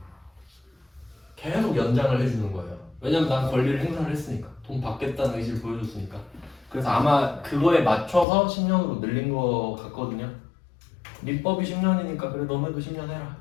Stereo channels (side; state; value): right; drops out; at 8.2 s